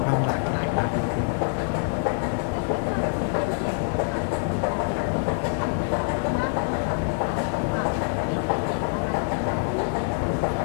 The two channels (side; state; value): right; silent; 62 dB below the other